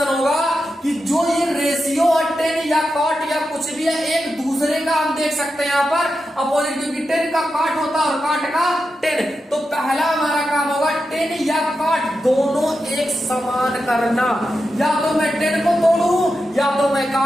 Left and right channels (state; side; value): normal; both; correlation 0.89